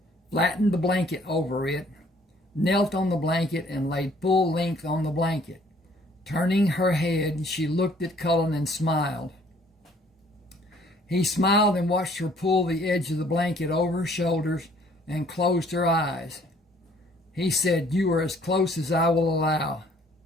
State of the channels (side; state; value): both; normal; correlation 0.60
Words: flattened the blanket over it, knelt on the blanket, and laid full length on the blanket. Turning her head, she looked at Cullen and smiled. He smiled and watched her pull the edge of the blanket over her shoulders and closed her eyes. He said, "You are as close as I will allow."